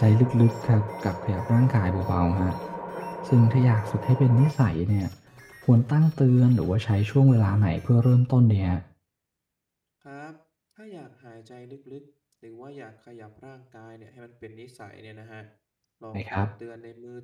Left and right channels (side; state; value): both; identical; correlation 1.00